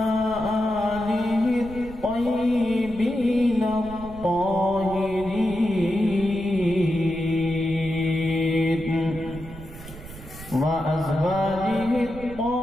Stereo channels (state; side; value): noise; right; rumble, 15 dB below the sound